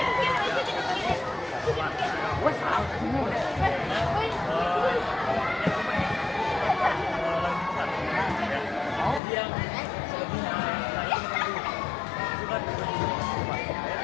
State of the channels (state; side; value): drops out; right; at 9.2 s